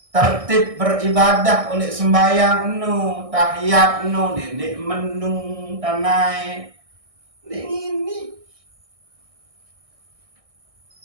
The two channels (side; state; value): left; late; 1.6 ms